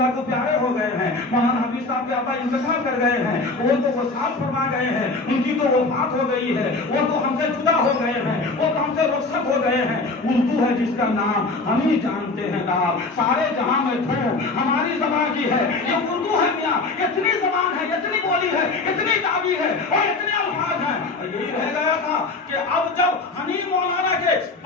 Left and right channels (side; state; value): right; quieter; 3.5 dB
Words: को प्यारे हो गए हैं, मौलाना हबीब साहब के अब्बा इंतकाल कर गए हैं, वो तो वसात फरमा गए हैं, उनकी तो वफात हो गई है, वो तो हमसे जुदा हो गए हैं, वो तो हमसे रुखसत हो गए हैं। उर्दू है जिसका नाम हम ही जानते हैं नाम, सारे जहां में धूम हमारी ज़बान की है। ये उर्दू है मियाँ, इतनी ज़बान है, इतनी बोली है, इतनी ताबीर है और इतने अल्फाज हैं। यही रह गया था कि अब जब हनीफ मौलाना के